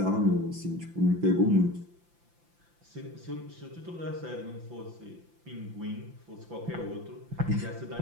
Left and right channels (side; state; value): left; late; 5.8 ms